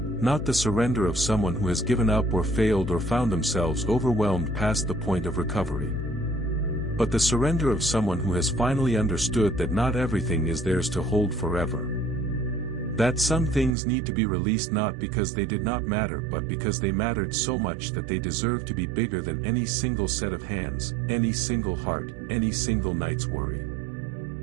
the surrender of someone who has given up or failed or found themselves overwhelmed past the point of recovery. But the surrender of someone who has finally understood that not everything is theirs to hold forever. That some things need to be released not because they did not matter but because they mattered so much that they deserve to be bigger than any single set of hands, any single heart, any single night's worry.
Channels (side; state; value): left; drops out; at 13.8 s